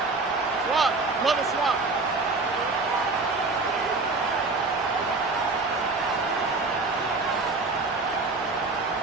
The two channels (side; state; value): left; quieter; 3.6 dB